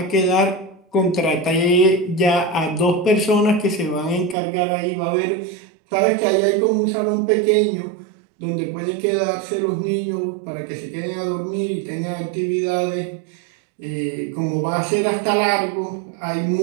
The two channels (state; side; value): drops out; left; at 4.4 s